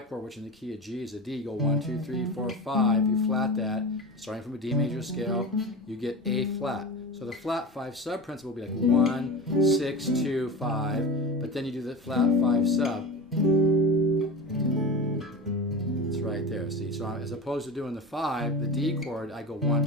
chord, which in the key of G is a D, you go 1, 2, 3, 4, 5, you flat that, starting from a D major scale, you get A flat. So the flat 5 sub principle will be like 1, 6, 2, 5, but then you do the flat 5 sub. Right there, see, so as opposed to doing the 5, the D chord, I go 1,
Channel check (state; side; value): normal; both; correlation 0.27